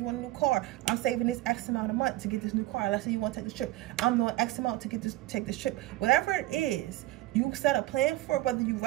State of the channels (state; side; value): quieter; left; 17.3 dB